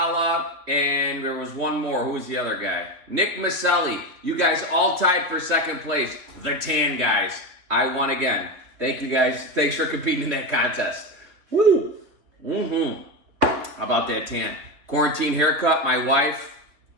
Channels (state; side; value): late; left; 3.2 ms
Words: and there was one more. Who was the other guy? Nick Maselli. You guys all tied for second place. The Tan guys. I won again. Thank you guys. Thanks for competing in that contest. Woo! How about that tan? Quarantine haircut, my wife.